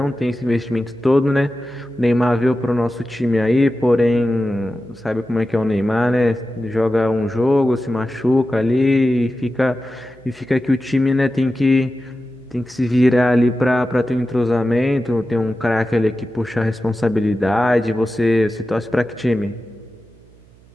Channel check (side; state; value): right; noise; hum, 27 dB below the sound